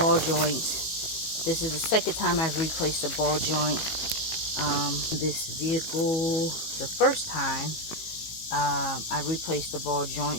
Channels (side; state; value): right; late; 18 ms